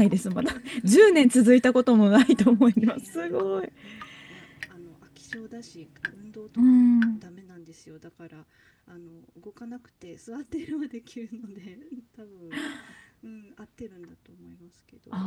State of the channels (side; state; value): both; identical; correlation 1.00